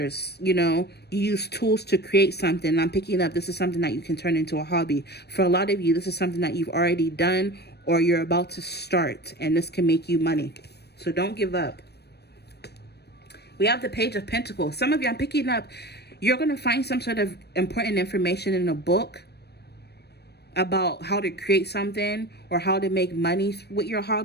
you know, you use tools to create something. I'm picking up, this is something that you can turn into a hobby. For a lot of you, this is something that you've already done or you're about to start, and this can make you money. So don't give up. We have the Page of Pentacles. Some of you, I'm picking up, you're going to find some sort of important information in a book about how to create something or how to make money with your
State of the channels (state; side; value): late; right; 0.47 ms